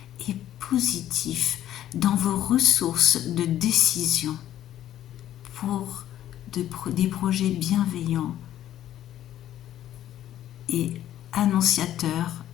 et positif dans vos ressources de décision pour des projets bienveillants et annonciateur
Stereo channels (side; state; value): right; quieter; 12.2 dB